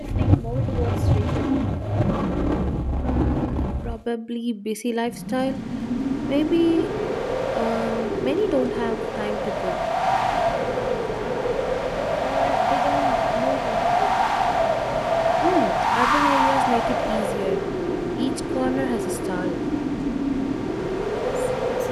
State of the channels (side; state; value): both; identical; correlation 1.00